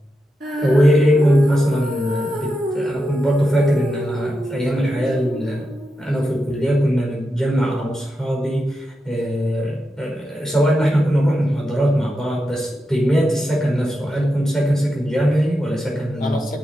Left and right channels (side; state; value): both; normal; correlation 0.87